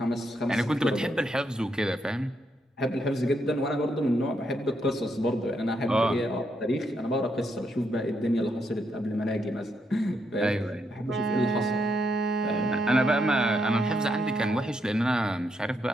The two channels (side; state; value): both; normal; correlation 0.78